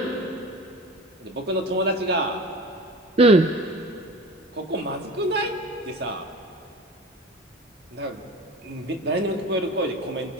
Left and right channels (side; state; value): both; normal; correlation 0.36